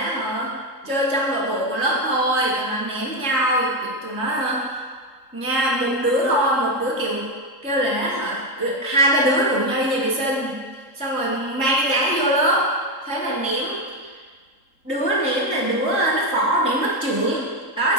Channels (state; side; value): late; right; 3.8 ms